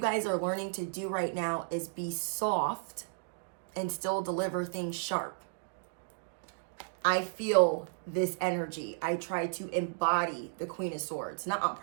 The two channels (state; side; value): silent; left; digital silence